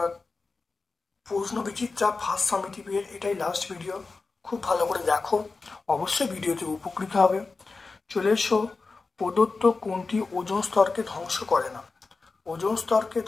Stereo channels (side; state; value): right; quieter; 4.0 dB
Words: প্রশ্ন বিচিত্রা ফার্স্ট সামেটিভের এটাই লাস্ট ভিডিও। খুব ভালো করে দেখো, অবশ্যই ভিডিওতে উপকৃত হবে। চলে এসো, প্রদত্ত কোনটি ওজোন স্তরকে ধ্বংস করে না? ওজোন স্তরকে